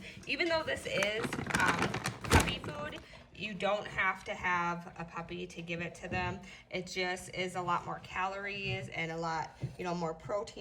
Even though this is puppy food, you don't have to have a puppy to give it to them. It just is a lot more calories and a lot, more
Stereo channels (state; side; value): identical; both; correlation 1.00